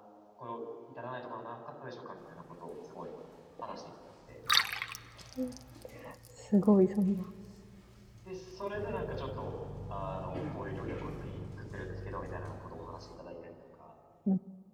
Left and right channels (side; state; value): both; identical; correlation 1.00